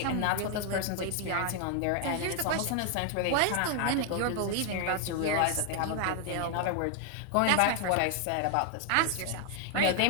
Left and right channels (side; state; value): both; different; correlation 0.00